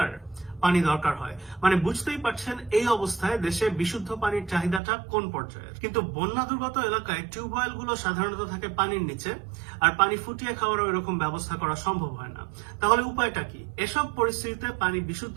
পানি দরকার হয়। মানে বুঝতেই পারছেন এই অবস্থায় দেশে বিশুদ্ধ পানির চাহিদাটা কোন পর্যায়ে। কিন্তু বন্যা দুর্গত এলাকায় টিউবওয়েল গুলো সাধারণত থাকে পানির নিচে, আর পানি ফুটিয়ে খাওয়ারও এরকম ব্যবস্থা করা সম্ভব হয় না। তাহলে উপায়টা কি? এসব পরিস্থিতিতে পানি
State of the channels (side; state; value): left; drops out; at 4.8 s